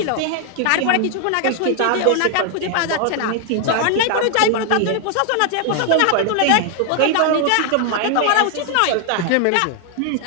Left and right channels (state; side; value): different; both; correlation 0.00